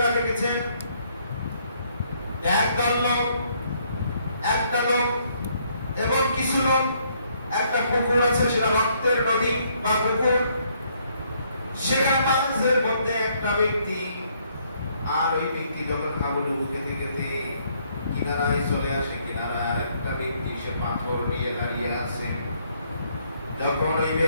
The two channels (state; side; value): inverted; both; correlation -0.69